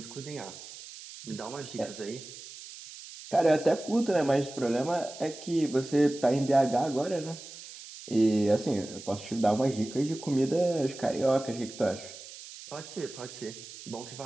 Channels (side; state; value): right; noise; hiss, 15 dB below the sound